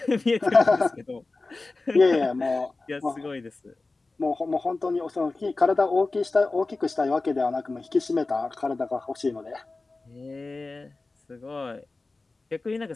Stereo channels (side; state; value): right; quieter; 3.4 dB